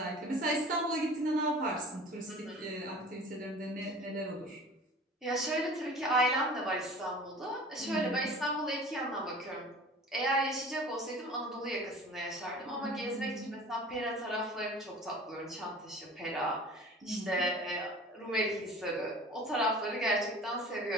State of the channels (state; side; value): normal; both; correlation 0.42